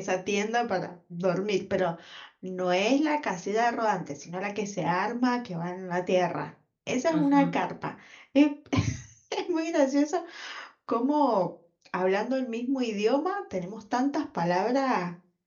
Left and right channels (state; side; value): identical; both; correlation 1.00